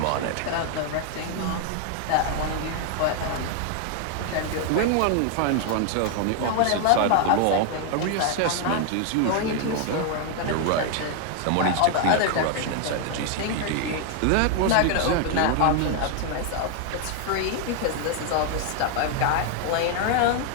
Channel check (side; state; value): both; different; correlation 0.00